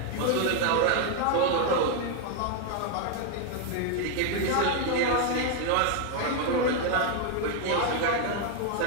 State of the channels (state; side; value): different; both; correlation 0.01